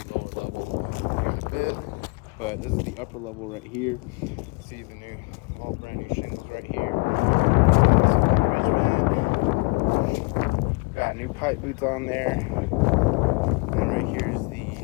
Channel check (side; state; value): right; quieter; 31.4 dB